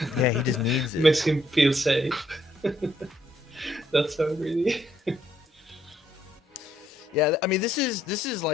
Yeah, he just needs it. Makes him feel safe. That's so greedy. Yeah, I mean this is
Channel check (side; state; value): both; normal; correlation 0.71